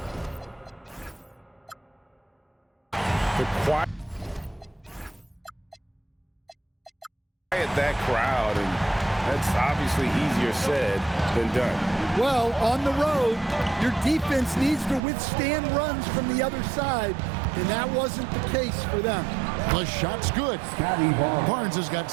to quiet that crowd, and that's obviously easier said than done. Well, on the road, your defense needs to withstand runs from the other side, and that wasn't the case for them. The shot's good. Barnes has got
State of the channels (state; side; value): drops out; left; at 15.0 s